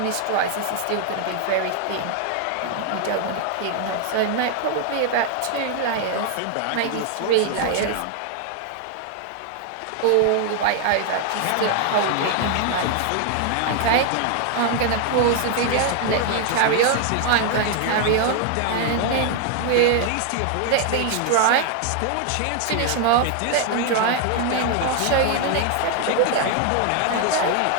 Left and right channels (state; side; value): different; both; correlation 0.00